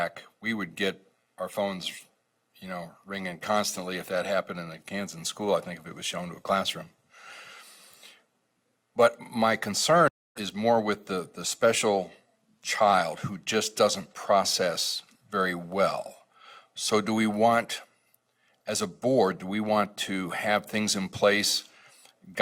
We would get our phones, you know, ringing constantly if that happened in a Kansas school, I think, if it was shown to a classroom. But my concern is more with the special child who just doesn't process very well. So do we want, as a board, do we want to have things in place,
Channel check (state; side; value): identical; both; correlation 1.00